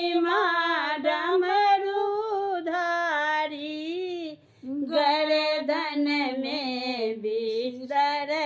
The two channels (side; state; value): both; identical; correlation 1.00